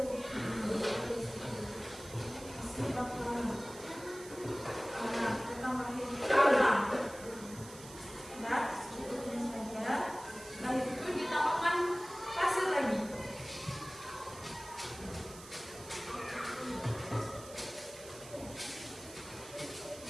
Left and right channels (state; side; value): noise; right; hiss, 16 dB below the sound